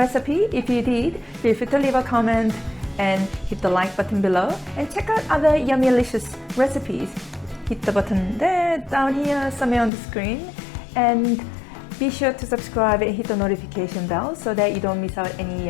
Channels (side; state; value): right; drops out; at 9.9 s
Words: If you did, feel free to leave a comment and hit the like button below and check out other yummylicious recipes. Hit the button there, down here, somewhere on the screen, and be sure to subscribe and hit the notification bell so that you don't miss out any